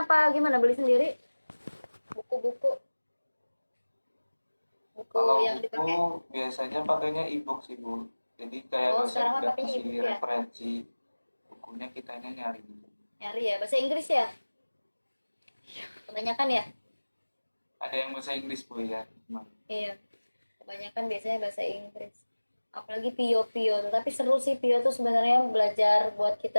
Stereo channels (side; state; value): both; inverted; correlation -1.00